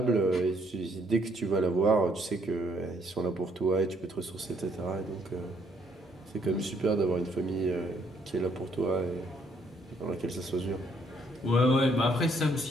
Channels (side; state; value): both; normal; correlation 0.69